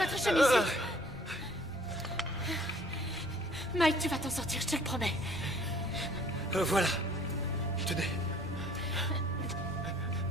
chemise. Mike, tu vas t'en sortir, je te le promets. Voilà. Tenez.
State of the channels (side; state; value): both; normal; correlation 0.55